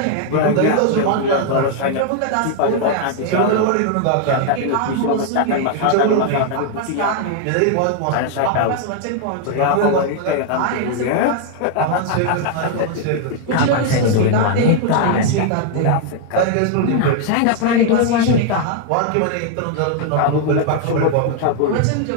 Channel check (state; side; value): different; both; correlation 0.00